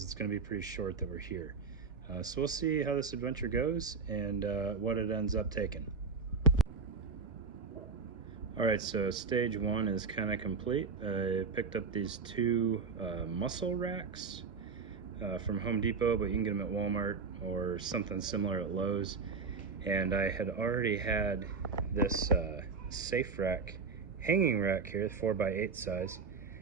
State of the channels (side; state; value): left; quieter; 5.0 dB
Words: it's going to be pretty short that we're here. So we'll see how this adventure goes and what it ends up taking. All right, so stage one is kind of complete. I picked up these two muscle racks from Home Depot, but you can get them at Walmart or something similar at Lowe's. And I had already had this safe rack, hanging rack here, 4x8 size.